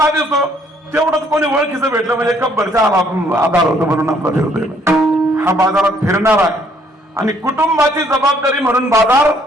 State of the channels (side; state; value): both; normal; correlation 0.65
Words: दिसतो तेवढंच कोणी ओळखीचं भेटलं म्हणजे कब्बरचा आधार होतो म्हणून आपला फिरतोय. हा बाजारात फिरणारा आहे आणि कुटुंबाची जबाबदारी म्हणून बाजार